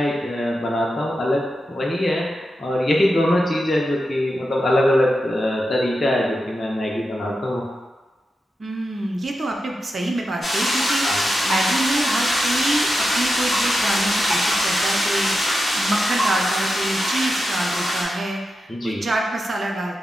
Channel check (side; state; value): both; normal; correlation 0.89